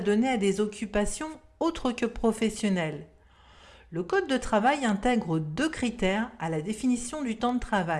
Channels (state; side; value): identical; both; correlation 1.00